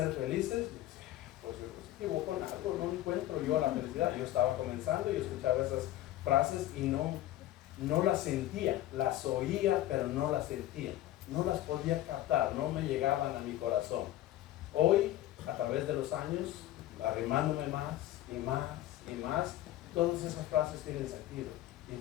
felices, pues yo me equivoco en algo, no encuentro yo la felicidad. Yo estaba comenzando y escuchaba esas frases y no las sentía, las oía, pero no las sentía, no las podía captar, no me llegaban a mi corazón. Hoy, a través de los años, arrimándome más y más y más, todas esas frases tienen sentido. Y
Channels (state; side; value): quieter; right; 14.2 dB